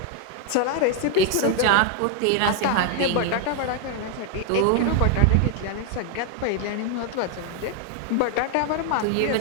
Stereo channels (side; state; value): both; different; correlation 0.00